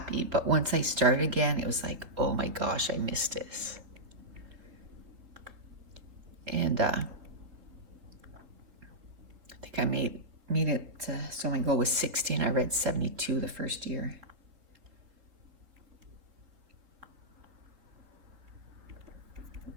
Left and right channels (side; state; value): left; late; 3.8 ms